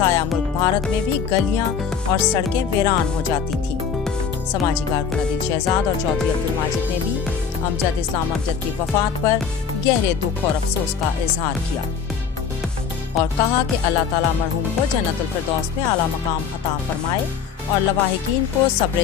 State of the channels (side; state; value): right; quieter; 6.7 dB